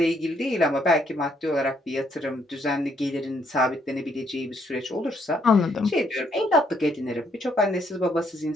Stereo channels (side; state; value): both; normal; correlation 0.71